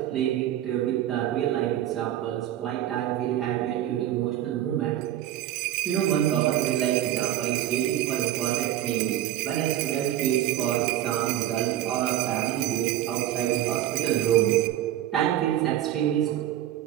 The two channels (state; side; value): quieter; left; 12.7 dB